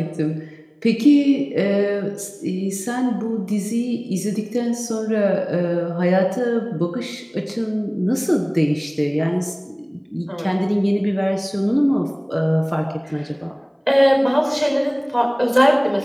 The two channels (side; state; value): both; identical; correlation 1.00